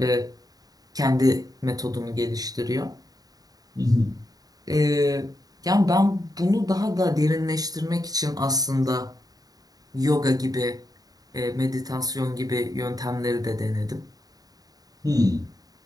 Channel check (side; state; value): left; late; 0.18 ms